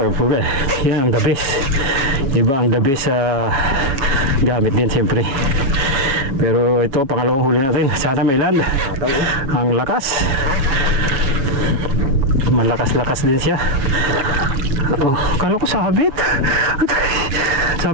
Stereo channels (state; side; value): late; left; 7.3 ms